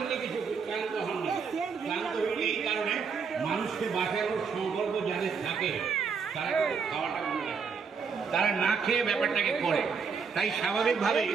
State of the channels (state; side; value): quieter; left; 5.7 dB